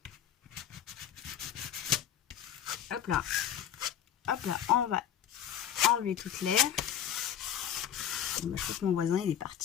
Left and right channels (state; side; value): quieter; right; 9.8 dB